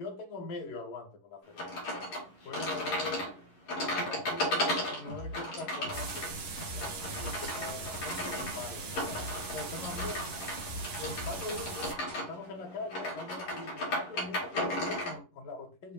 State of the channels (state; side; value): late; right; 11 ms